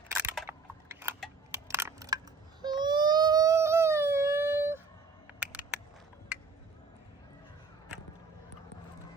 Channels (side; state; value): left; quieter; 4.3 dB